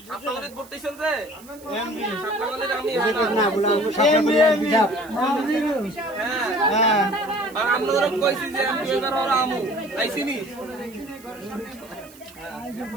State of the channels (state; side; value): noise; right; hiss, 23 dB below the sound